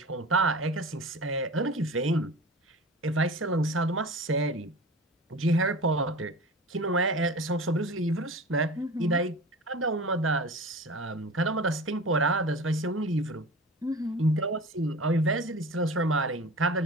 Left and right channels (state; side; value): normal; both; correlation 0.36